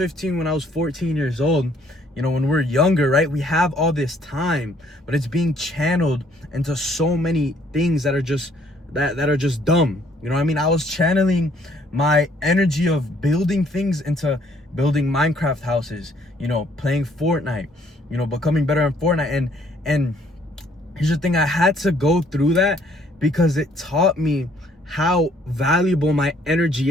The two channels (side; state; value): both; normal; correlation 0.63